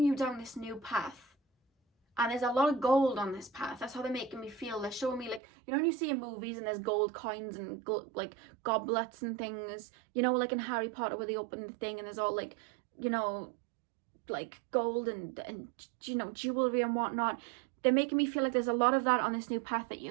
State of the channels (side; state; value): left; drops out; at 5.4 s